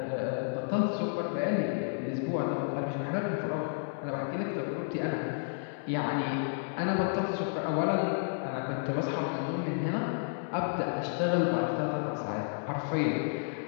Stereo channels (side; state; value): right; silent; digital silence